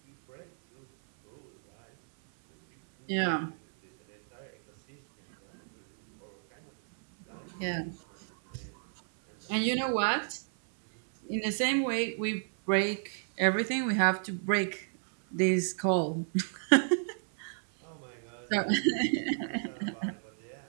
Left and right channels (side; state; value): left; silent; 57 dB below the other